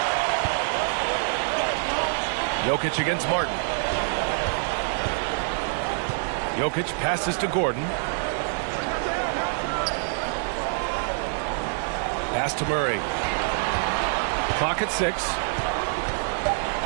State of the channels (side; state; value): left; silent; digital silence